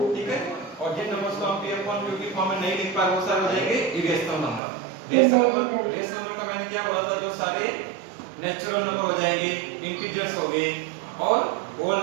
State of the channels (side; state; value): left; drops out; at 4.6 s